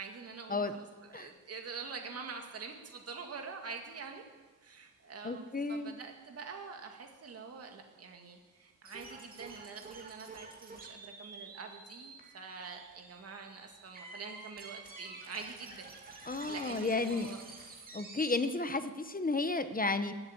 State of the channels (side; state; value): both; normal; correlation 0.31